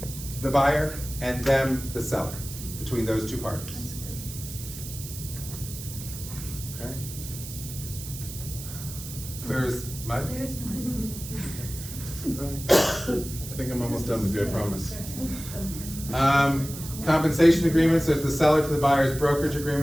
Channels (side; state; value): right; noise; hiss, 11 dB below the sound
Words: the buyer, and them, the seller, between those two parties. Okay? Clear as mud? I think I'm almost done with you, I promise. Compensation agreement, so it's the seller to the buyer's brokerage